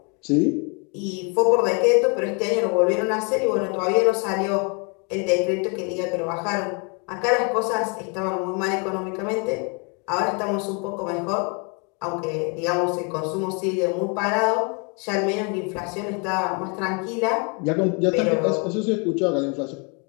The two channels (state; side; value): quieter; right; 34.6 dB